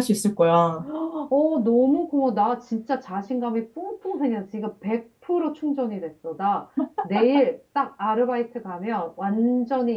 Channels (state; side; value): identical; both; correlation 1.00